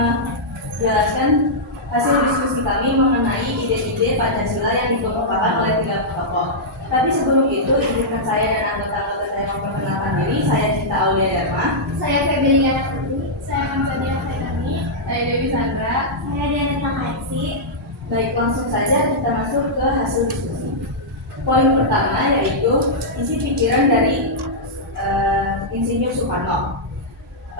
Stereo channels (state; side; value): normal; both; correlation -0.10